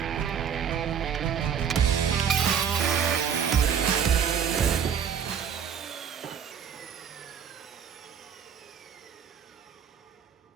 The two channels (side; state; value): left; quieter; 7.7 dB